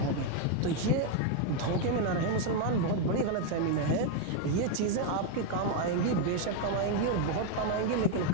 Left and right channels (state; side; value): different; both; correlation 0.01